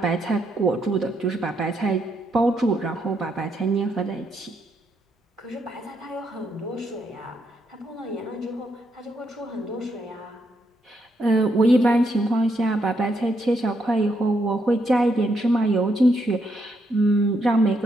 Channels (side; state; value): both; normal; correlation 0.77